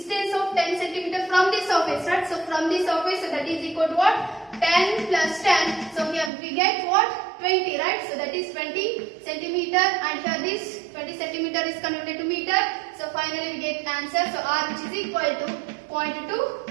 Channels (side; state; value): left; drops out; at 6.3 s